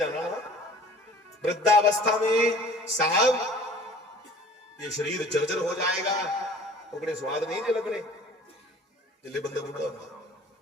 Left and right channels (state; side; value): normal; both; correlation 0.48